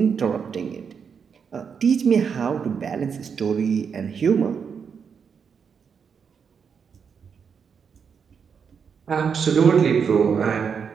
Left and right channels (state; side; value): quieter; left; 6.5 dB